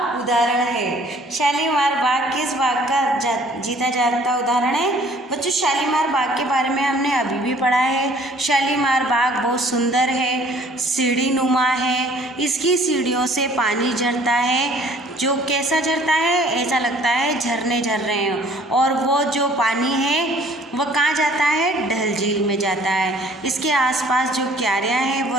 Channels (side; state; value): both; normal; correlation 0.55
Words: उदाहरण है? शालीमार बाग किस बाग का जीता जागता उदाहरण है? बच्चों, शालीमार बाग के बारे में हमने अभी भी पढ़ा है। शालीमार बाग बहुत सुंदर है, सीढ़ी नुमा है, इसकी सीढ़ियों से पानी झरता है, जो कैसा झरता है, ऐसा लगता है झरने झर रहे हैं। और वो जो पानी है वह कहाँ जाता है? डल झील में जाता है। इसके आसपास जो क्यारियाँ हैं वो